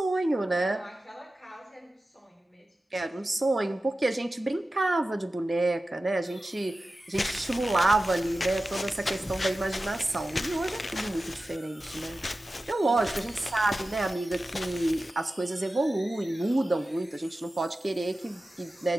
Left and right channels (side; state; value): both; normal; correlation 0.95